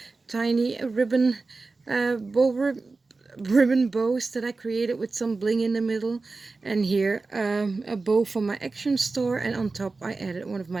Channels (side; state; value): left; quieter; 3.8 dB